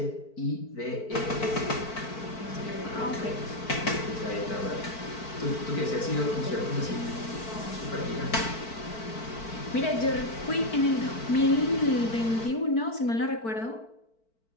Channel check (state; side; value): late; right; 4.5 ms